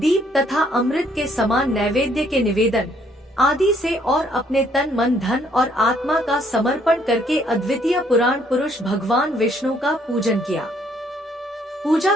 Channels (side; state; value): both; normal; correlation 0.67